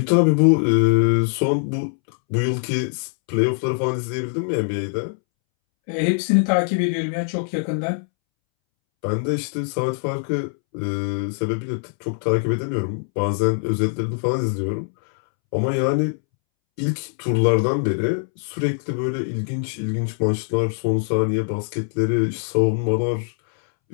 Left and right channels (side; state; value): right; silent; 64 dB below the other